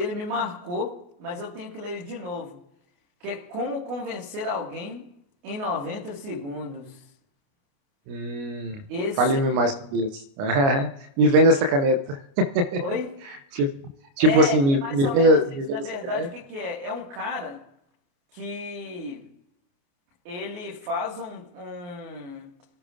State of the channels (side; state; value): left; late; 29 ms